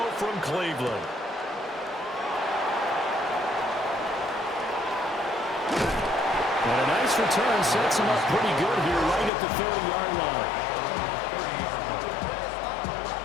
from Cleveland. And a nice return sets him up pretty good here right at the 30-yard line.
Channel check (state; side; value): drops out; right; at 9.3 s